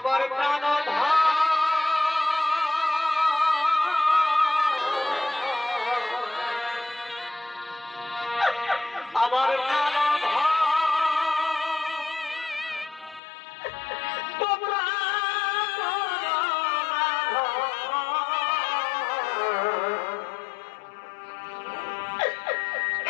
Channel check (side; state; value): right; drops out; at 13.2 s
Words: প্রাণ আমার প্রাণ তোমরা